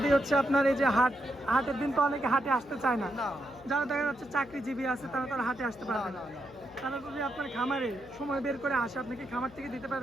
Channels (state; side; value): noise; left; hum, 24 dB below the sound